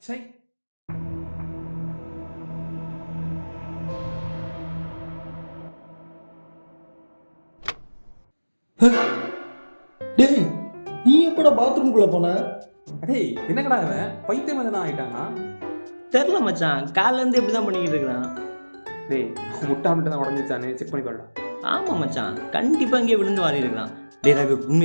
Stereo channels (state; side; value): inverted; both; correlation -1.00